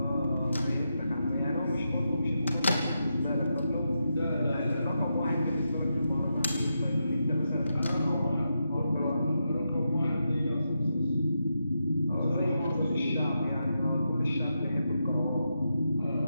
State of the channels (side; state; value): both; inverted; correlation -0.86